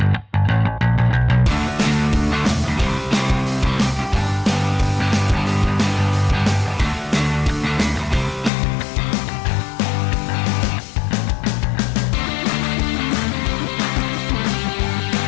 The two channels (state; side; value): drops out; right; at 8.5 s